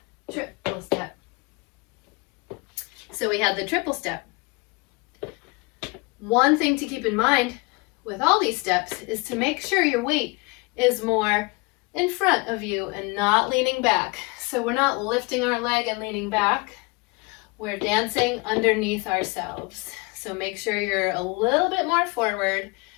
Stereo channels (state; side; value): quieter; right; 27.8 dB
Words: triple step. So we had the triple step. One thing to keep in mind with all these steps is to make sure your weight is more in front of you and not leaning back. So we're not lifting our leg and leaning back. We're dancing underneath ourselves. So make sure you're a little bit more forward